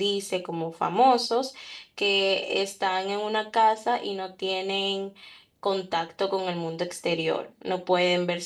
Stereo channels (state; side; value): identical; both; correlation 1.00